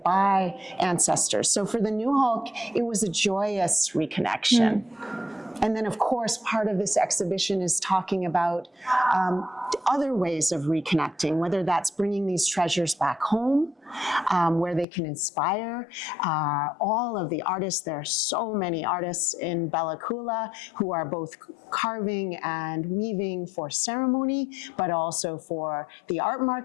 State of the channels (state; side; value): drops out; right; at 14.9 s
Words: ancestors. So for the Nuxalk, it was a joyous reconnection. And then, of course, part of this exhibition is talking about other ways of reconnecting, whether that's bringing these treasures back home, where they can inspire all of the artists. There are so many artists in Bella Coola who are both carving and weaving for ceremony, but also for the art